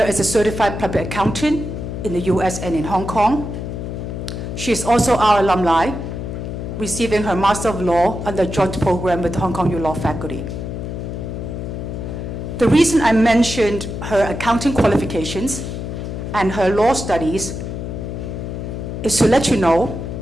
is a certified public accountant in the US and in Hong Kong. She is also our alumni, receiving her Master of Law under a joint program with the Hong Kong U Law faculty. The reason I mentioned her accounting qualifications and her law studies is to let you know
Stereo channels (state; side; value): noise; left; hum, 6 dB below the sound